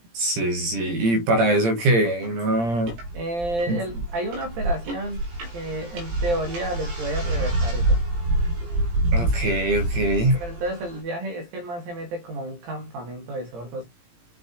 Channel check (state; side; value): late; left; 17 ms